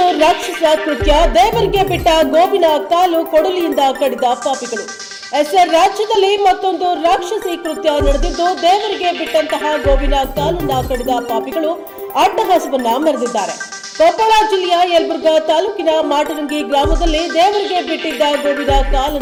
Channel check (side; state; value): both; identical; correlation 1.00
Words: ರಾಕ್ಷಸ ಕೃತ್ಯ, ದೇವರಿಗೆ ಬಿಟ್ಟ ಗೋವಿನ ಕಾಲು ಕೊಡಲಿಯಿಂದ ಕಡಿದ ಪಾಪಿಗಳು. ರಾಜ್ಯದಲ್ಲಿ ಮತ್ತೊಂದು ರಾಕ್ಷಸಿ ಕೃತ್ಯ ನಡೆದಿದ್ದು, ದೇವರಿಗೆ ಬಿಟ್ಟಂತಹ ಗೋವಿನ ಕಾಲನ್ನ ಕಡಿದ ಪಾಪಿಗಳು ಅಟ್ಟಹಾಸವನ್ನ ಮೆರೆದಿದ್ದಾರೆ. ಕೊಪ್ಪಳ ಜಿಲ್ಲೆಯ ಯಲಬುರ್ಗಾ ತಾಲೂಕಿನ ಮಾಟರಂಗಿ ಗ್ರಾಮದಲ್ಲಿ ದೇವರಿಗೆ ಬಿಟ್ಟಿದ್ದ ಗೋವಿನ